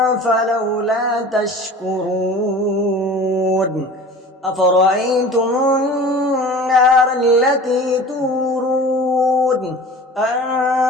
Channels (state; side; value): normal; both; correlation 0.40